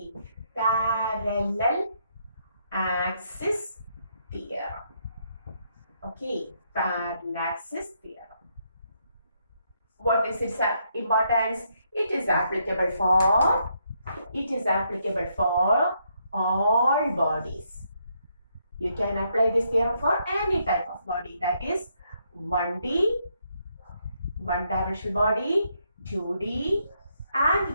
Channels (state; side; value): inverted; both; correlation -0.75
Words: parallel axis theorem. Okay, Parallaxis theorem. What is its importance? It is applicable for all bodies. You can apply this theorem for any type of body, that is 1D, one-dimensional body, 2D